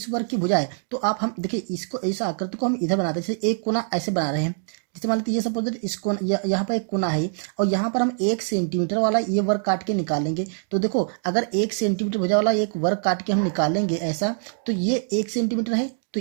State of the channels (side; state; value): left; silent; digital silence